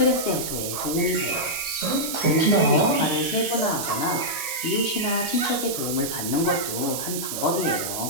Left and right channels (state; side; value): noise; right; hiss, 4 dB below the sound